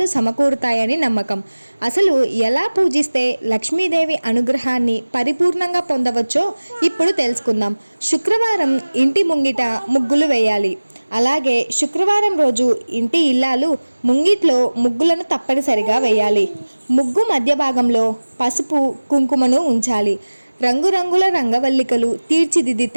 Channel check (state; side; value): inverted; both; correlation -1.00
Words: సమకూరుతాయని నమ్మకం। అసలు ఎలా పూజిస్తే లక్ష్మీదేవి అనుగ్రహాన్ని పరిపూర్ణంగా పొందవచ్చో ఇప్పుడు తెలుసుకుందాం। శుక్రవారం ఇంటి ముంగిట ముగ్గులు వేయాలి। అలాగే శుక్రవారం రోజు ఇంటి ఇల్లాలు ముంగిట్లో ముగ్గులను తప్పనిసరిగా వేయాలి। ముగ్గు మధ్య భాగంలో పసుపు కుంకుమను ఉంచాలి। రంగురంగుల రంగవల్లికలు